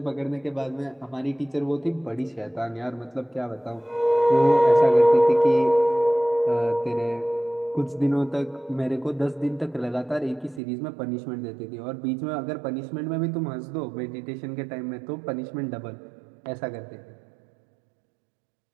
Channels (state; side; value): drops out; left; at 10.6 s